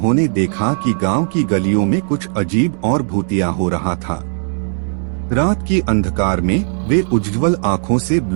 देखा कि गांव की गलियों में कुछ अजीब और भूतिया हो रहा था। रात की अंधकार में वे उज्ज्वल आंखों से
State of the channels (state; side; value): silent; left; digital silence